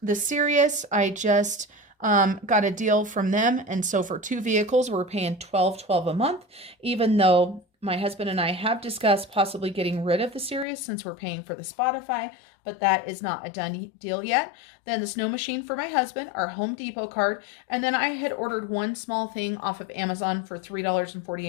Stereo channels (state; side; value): drops out; right; at 10.7 s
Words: The Sirius, I just got a deal from them, and so for 2 vehicles we're paying $12.12 a month, even though my husband and I have discussed possibly getting rid of the Sirius since we're paying for the Spotify, but that is not a done deal yet. Then the snow machine for my husband, our Home Depot card, and then I had ordered one small thing off of Amazon for